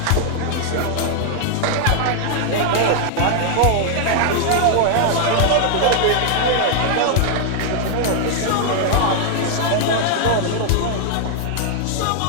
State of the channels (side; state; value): both; different; correlation 0.00